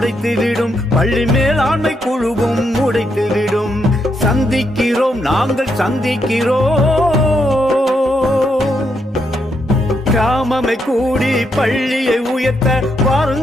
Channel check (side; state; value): both; normal; correlation 0.79